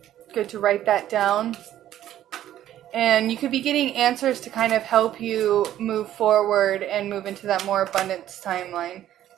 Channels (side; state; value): left; quieter; 12.2 dB